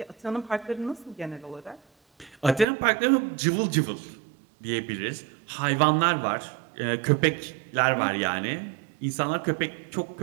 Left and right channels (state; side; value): drops out; left; at 2.7 s